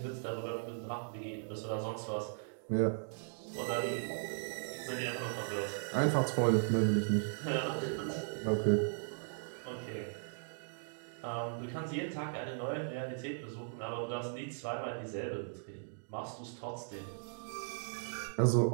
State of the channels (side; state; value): left; silent; digital silence